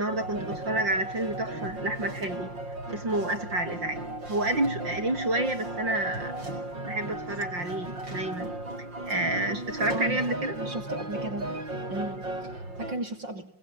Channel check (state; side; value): late; left; 5.6 ms